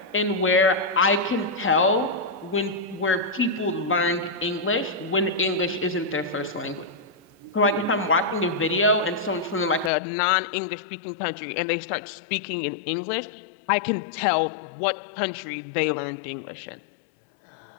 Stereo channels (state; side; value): drops out; right; at 9.9 s